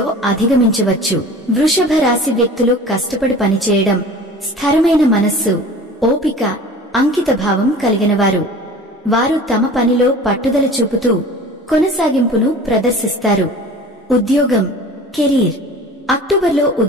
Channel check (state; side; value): normal; both; correlation 0.41